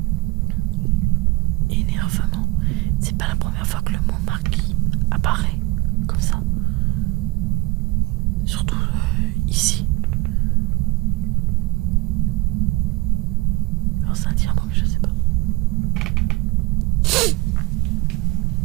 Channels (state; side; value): quieter; left; 22.6 dB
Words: Énervement, c'est pas la première fois que le mot marquis apparaît comme ça. Surtout ici. Alors c'est un dire mot, mais je sais pas.